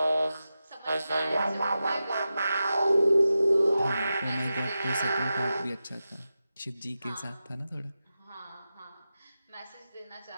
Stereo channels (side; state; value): both; inverted; correlation -0.92